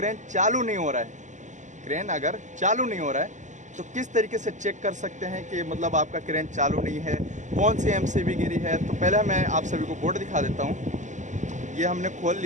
चालू नहीं हो रहा है। क्रेन अगर चालू नहीं हो रहा है तो किस तरीके से चेक कर सकते हैं कि मतलब आपका क्रेन चालू नहीं है, कौन सी एमसीबी गिरी है। तो पहले मैं आप सभी को बोर्ड दिखा देता हूँ। ये हमने खोल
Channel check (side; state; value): left; late; 0.35 ms